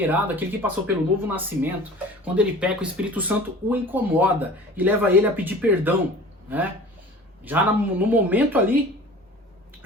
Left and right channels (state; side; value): normal; both; correlation 0.42